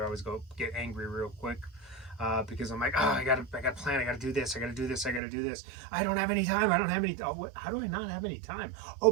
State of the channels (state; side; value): drops out; left; at 5.2 s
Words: always get angry real quick. Because I'm like, oh, I gotta plan, I gotta do this, I gotta do this, I gotta do this. I don't have any time. How do I not have any time? Oh,